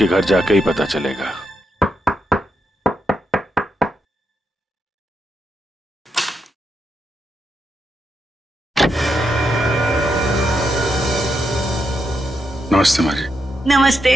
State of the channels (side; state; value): both; normal; correlation 0.82